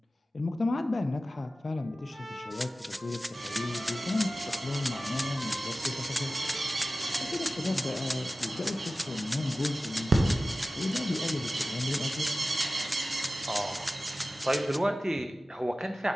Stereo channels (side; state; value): both; normal; correlation 0.95